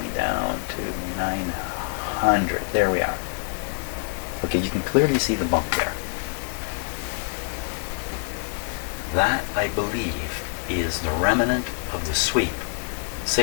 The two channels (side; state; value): right; silent; digital silence